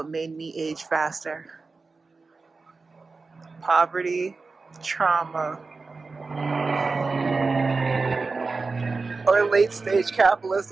made me age faster. Poverty, trauma, or late stage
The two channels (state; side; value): quieter; left; 4.1 dB